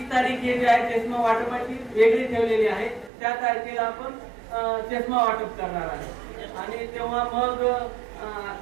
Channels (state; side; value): drops out; left; at 3.1 s